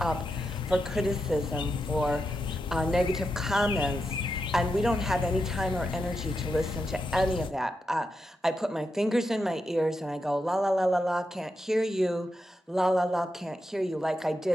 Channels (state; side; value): normal; both; correlation 0.86